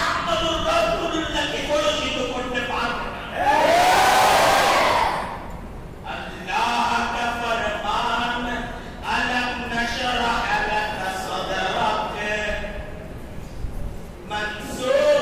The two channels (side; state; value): both; identical; correlation 1.00